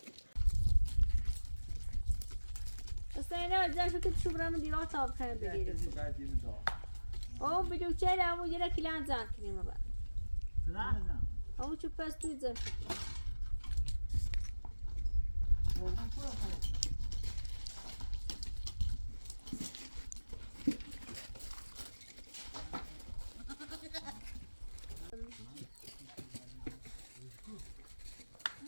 استاینا ازش که شو برام دیوار تاب کنه بگیره او بیدو چه همو یه کلان زن کنیم بعد همو چه پستوی زن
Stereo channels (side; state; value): both; inverted; correlation -1.00